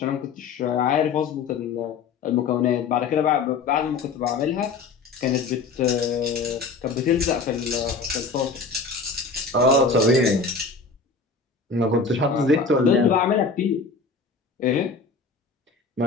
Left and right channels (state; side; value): quieter; right; 4.5 dB